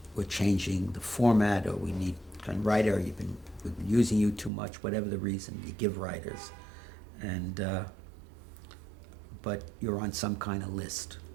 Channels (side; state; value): left; drops out; at 4.5 s